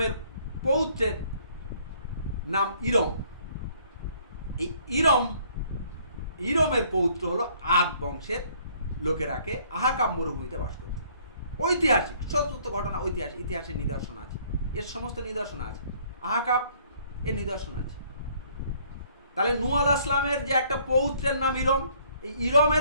পৌত্রের নাম ইরম, এই ইরমের পৌত্র হলো আদ বংশের লোকেরাকে আহাকাম মরুভূমিতে বাস করত। ঐতিহাসিক সত্য ঘটনা, ঐতিহাসিক ইতিহাসের নিদর্শন আছে, এর সমস্ত নিদর্শন আছে, আহাকাব এর নিদর্শন আছে। তাহলে নূহ আলাইহিস সালামের যে একটা পৌত্রের নাম ইরম, এই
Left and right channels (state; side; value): inverted; both; correlation -0.61